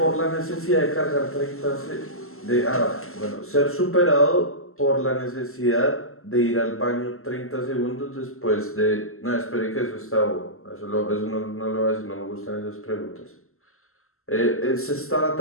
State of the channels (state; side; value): late; right; 0.62 ms